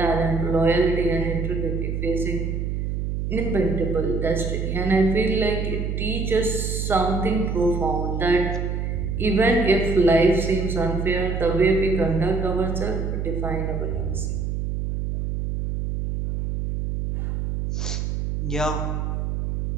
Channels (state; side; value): noise; right; hum, 2 dB below the sound